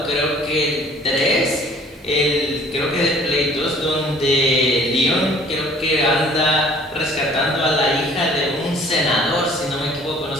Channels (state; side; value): normal; both; correlation 0.54